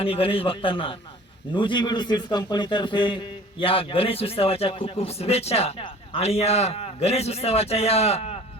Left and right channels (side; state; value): both; normal; correlation 0.46